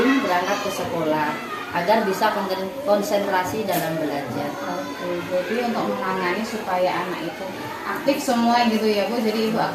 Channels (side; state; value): both; identical; correlation 1.00